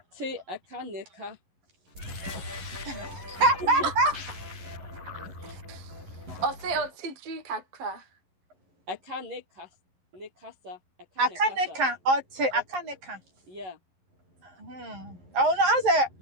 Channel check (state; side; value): late; left; 11 ms